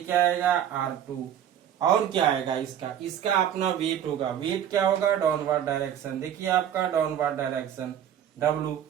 आएगा, R2। और क्या आएगा इसका अपना वेट होगा। वेट क्या होगा, डाउनवर्ड डायरेक्शन। देखिए आपका डाउनवर्ड डायरेक्शन W,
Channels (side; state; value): left; quieter; 9.9 dB